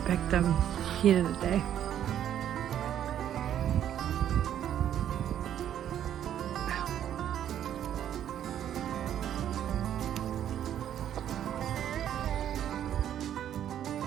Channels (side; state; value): left; quieter; 10.4 dB